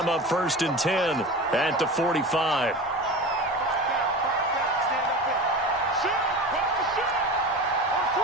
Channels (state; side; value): normal; both; correlation 0.31